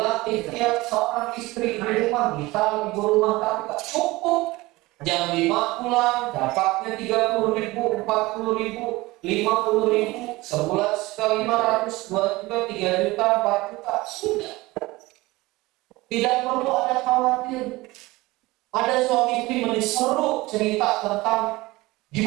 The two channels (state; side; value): quieter; left; 20.5 dB